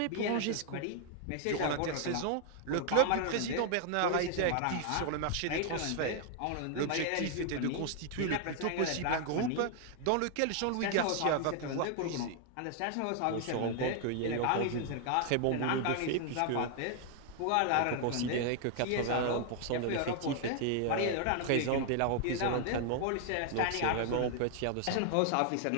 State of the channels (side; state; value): both; different; correlation 0.00